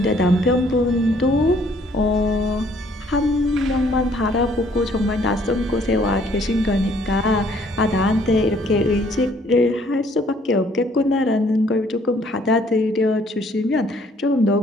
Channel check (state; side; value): normal; both; correlation 0.62